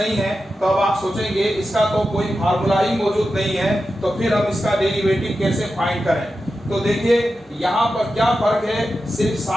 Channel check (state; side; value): normal; both; correlation 0.91